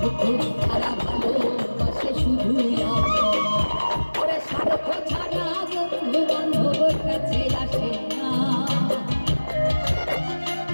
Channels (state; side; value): inverted; both; correlation -1.00